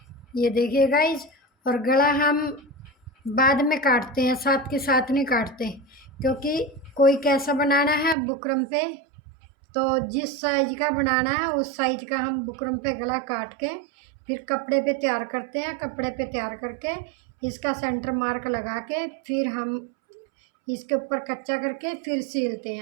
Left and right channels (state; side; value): drops out; left; at 8.2 s